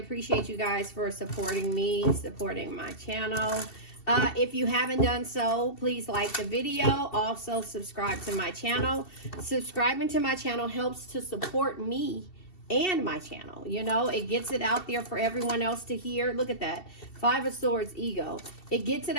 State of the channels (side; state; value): right; late; 2.7 ms